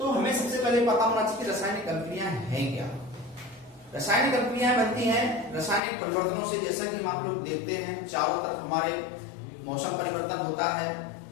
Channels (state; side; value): drops out; right; at 5.8 s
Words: हमें सबसे पहले पता होना चाहिए कि रासायनिक अभिक्रिया है क्या। रासायनिक अभिक्रियाएं बनती हैं रासायनिक परिवर्तनों से। जैसा कि हम आप लोग देखते हैं चारों तरफ हमारे मौसम परिवर्तन होता है,